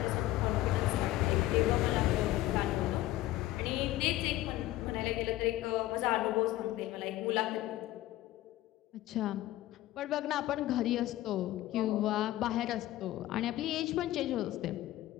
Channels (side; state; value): right; quieter; 15.6 dB